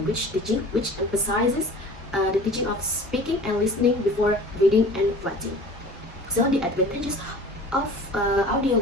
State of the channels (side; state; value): both; normal; correlation 0.42